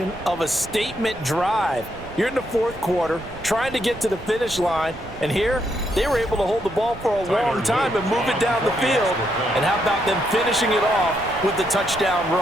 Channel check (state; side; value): noise; right; rumble, 16 dB below the sound